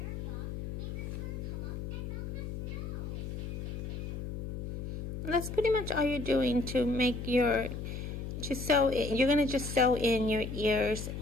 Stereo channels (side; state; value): left; noise; hum, 6 dB below the sound